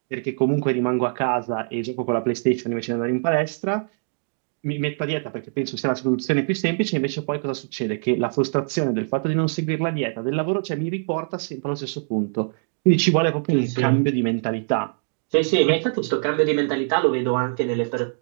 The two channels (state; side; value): silent; left; 63 dB below the other